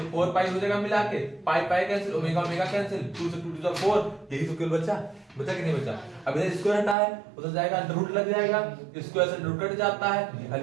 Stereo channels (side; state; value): left; drops out; at 7.0 s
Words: 4 पाई हो जाएगा मिला के, pi pi cancel, omega omega cancel, 2 से 2 टू द 4, यही तो केवल बचा, बचा कि नहीं बचा। अब इधर स्क्वायर हटा है उधर जाएगा अंडर रूट लग जाएगा, स्क्वायर से अंडर रूट कट जाता है,